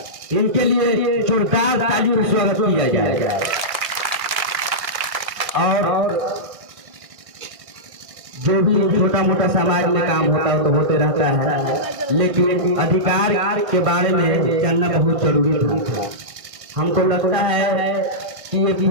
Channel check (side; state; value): left; late; 2.0 ms